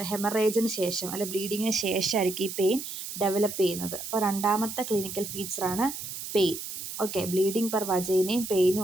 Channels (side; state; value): right; noise; hiss, 8 dB below the sound